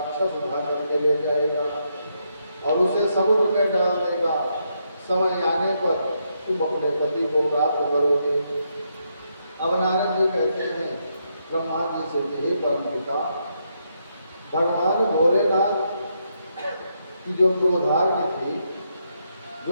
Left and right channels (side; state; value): both; inverted; correlation -0.79